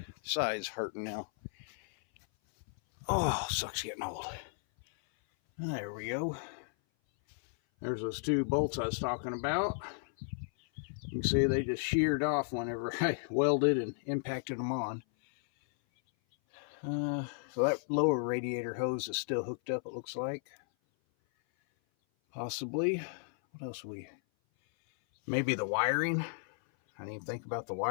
side's hurting now. Oh, sucks getting old. There we go. There's those two bolts I was talking about. You can see they just sheared off whenever I welded and impacted them on. So that lower radiator hose is still hooked up, it looks like. Possibly. What else maybe the wiring. I didn't even think about the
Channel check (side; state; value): right; silent; 55 dB below the other